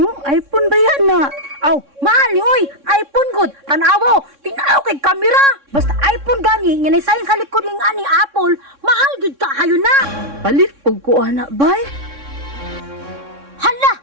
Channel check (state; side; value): late; left; 3.6 ms